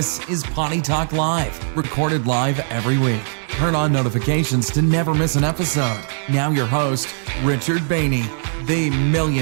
is Potty Talk Live, recorded live every week. Turn on notifications to never miss an episode. Now your host, Richard Bainey, the $1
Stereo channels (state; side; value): silent; left; 66 dB below the other